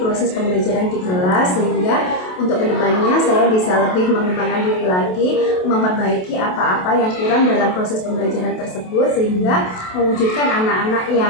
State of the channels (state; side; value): late; right; 27 ms